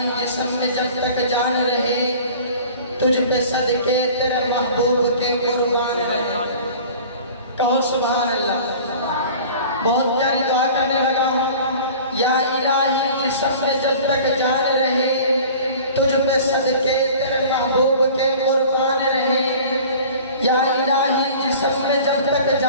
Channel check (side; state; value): both; inverted; correlation -0.43